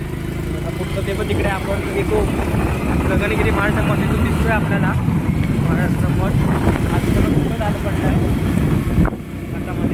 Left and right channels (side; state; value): both; identical; correlation 1.00